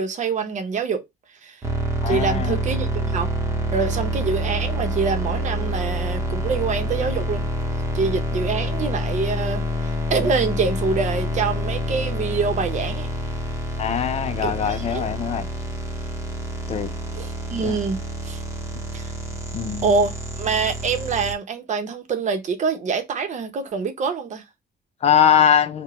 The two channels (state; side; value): normal; both; correlation 0.26